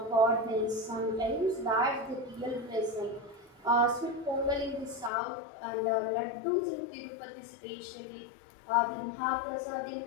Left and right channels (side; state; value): right; drops out; at 5.1 s